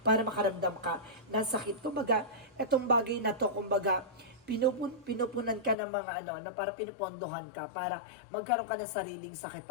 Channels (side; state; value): right; drops out; at 5.8 s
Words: para makaramdam ka ng sakit. Kumbaga, itong bagay na to, kumbaga, pinupunan ka ng mga na para pinupondohan ka para magkaroon ka ng sariling sakit